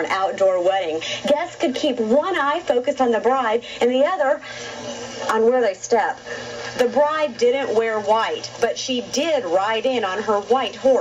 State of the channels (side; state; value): both; identical; correlation 1.00